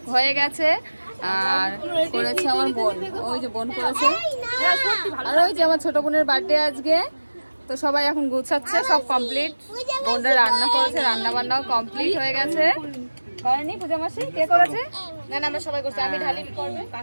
হয়ে গেছে। আর করেছে আমার বোন, ওই যে বোন করেছে, আর ওই যে আমার ছোট বোনের বার্থডে আজকে। তো সবাই এখন গুছাচ্ছে, সব কমপ্লিট। বোনরা রান্না করেছে, রান্না বান্নাও কমপ্লিট হয়ে গেছে। করেনি পূজা মাসি? কে করেছে? না আমরা সবাই করছি, আমি ঢালিনি করবে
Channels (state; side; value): inverted; both; correlation -1.00